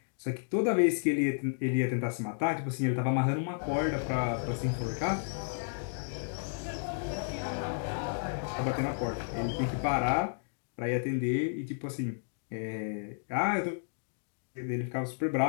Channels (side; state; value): right; silent; digital silence